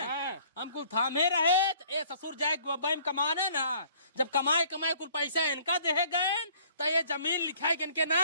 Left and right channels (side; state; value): both; inverted; correlation -0.57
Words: हम कुल थामे रहे। ए ससुर जाए बम कमाना ना, जब कमाए कमाए कुल पैसा इनका दे गए तो ये जमीन लिखाए के इनके